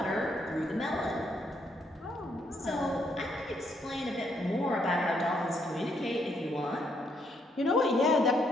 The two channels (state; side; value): normal; both; correlation 0.73